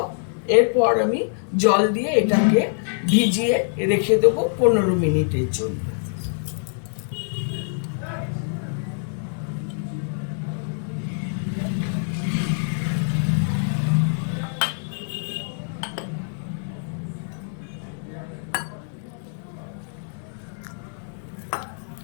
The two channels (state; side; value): silent; right; digital silence